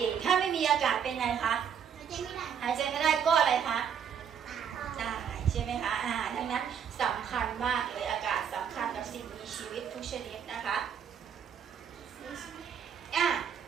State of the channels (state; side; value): quieter; left; 7.9 dB